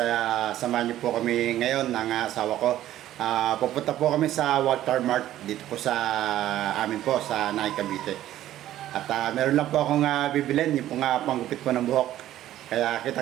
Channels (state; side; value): quieter; left; 13.2 dB